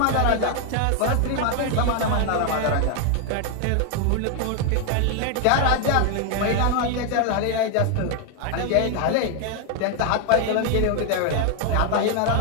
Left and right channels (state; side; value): different; both; correlation 0.00